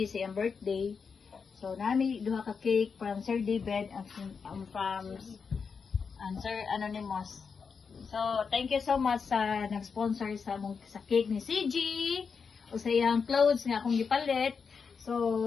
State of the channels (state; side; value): quieter; right; 5.7 dB